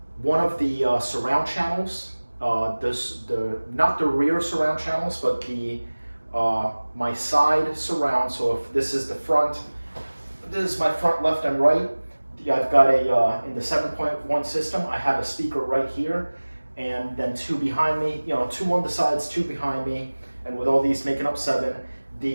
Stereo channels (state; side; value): inverted; both; correlation -1.00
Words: of the surround channels, not the rear surround channels, but my side surround. So if this is the front, this is my front, left, and right. I've got in the 7.1 system, I have a speaker right here, and then two behind me, two on the sides, two behind me, and with all these making up 7,